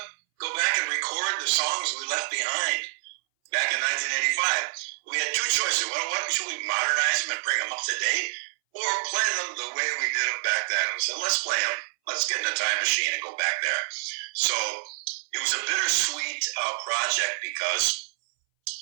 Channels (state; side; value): silent; left; 60 dB below the other